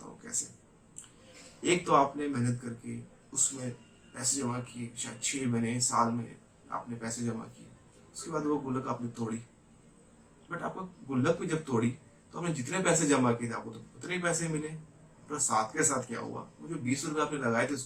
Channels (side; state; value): both; identical; correlation 1.00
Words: हूँ कैसे। एक तो आपने मेहनत करके उसमें पैसे जमा किए, शायद 6 महीने साल में आपने पैसे जमा किए। उसके बाद वो गुल्लक आपने तोड़ी। बट आपको गुल्लक भी जब तोड़ी तो आपने जितने पैसे जमा किए थे आपको तो उतने ही पैसे मिले। पर साथ के साथ क्या हुआ, वो जो 20 रुपए आपने लगाए थे